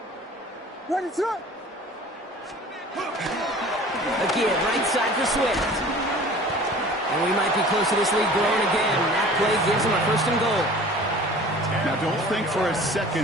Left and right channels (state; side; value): normal; both; correlation 0.45